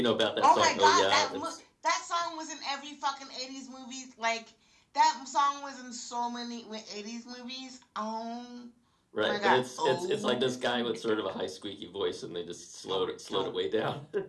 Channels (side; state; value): both; identical; correlation 1.00